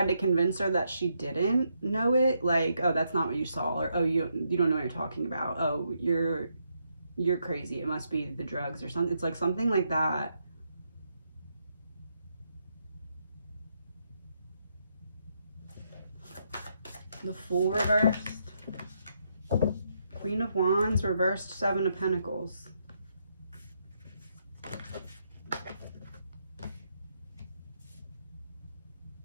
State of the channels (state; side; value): inverted; both; correlation -0.78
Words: to convince her that she didn't know it. Like, oh, that's not what you saw. Or, oh, you don't know what you're talking about. Oh, you're crazy. It must be the drugs or something. It's like something like that. The Fool reversed. Queen of Wands, reversed 7 of Pentacles.